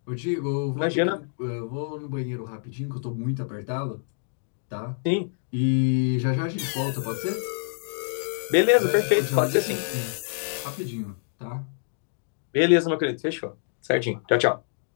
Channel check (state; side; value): silent; right; digital silence